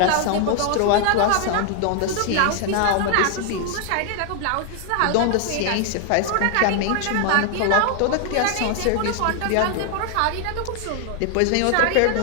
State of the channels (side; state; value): both; different; correlation 0.00